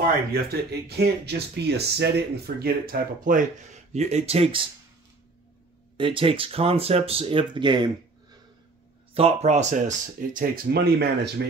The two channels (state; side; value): quieter; left; 3.5 dB